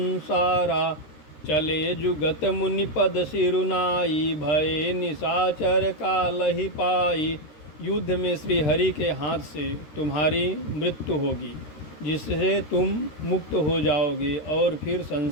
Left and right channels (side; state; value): right; late; 13 ms